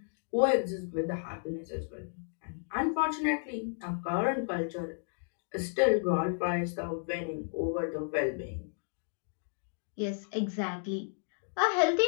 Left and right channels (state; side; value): silent; right; digital silence